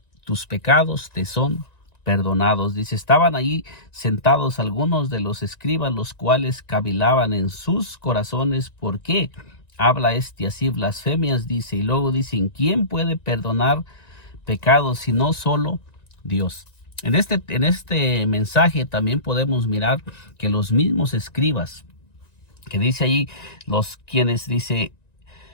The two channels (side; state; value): right; late; 1.9 ms